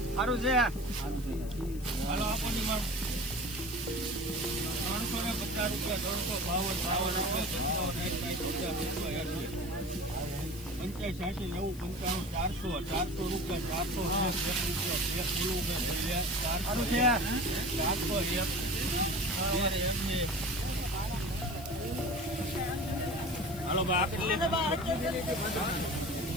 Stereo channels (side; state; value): left; noise; hiss, 18 dB below the sound